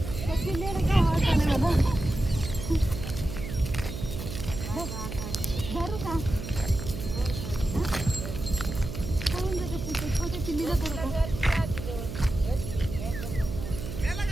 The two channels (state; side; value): noise; right; hum, 7 dB below the sound